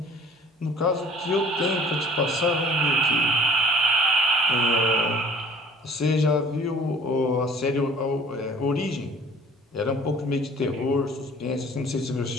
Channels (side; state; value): both; normal; correlation 0.50